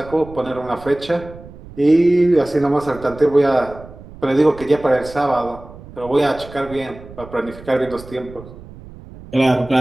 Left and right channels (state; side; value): noise; right; rumble, 18 dB below the sound